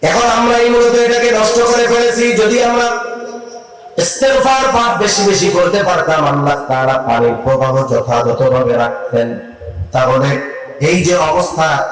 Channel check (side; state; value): both; identical; correlation 1.00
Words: এখন আমরা এই মূলত এটাকে নষ্ট করে ফেলেছি। যদি আমরা ইস্তেগফার পাঠ বেশি বেশি করতে পারতাম, আল্লাহ তাআলা পানির প্রবাহ যথাযথভাবে রাখতেন, তাহলে এই যে অবস্থা